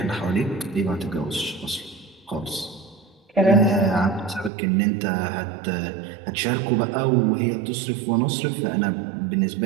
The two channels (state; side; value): drops out; left; at 4.5 s